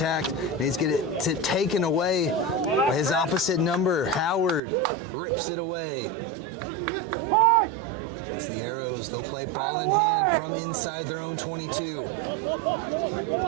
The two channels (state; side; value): drops out; left; at 4.6 s